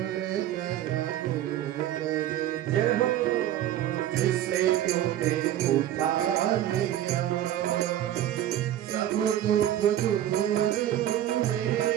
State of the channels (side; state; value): left; quieter; 12.1 dB